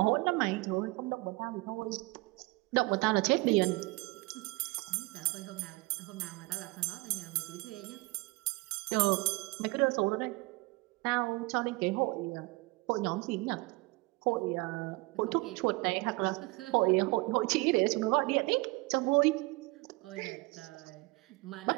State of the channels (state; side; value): quieter; left; 24.0 dB